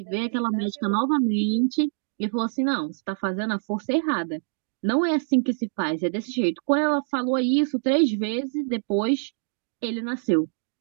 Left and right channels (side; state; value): left; silent; digital silence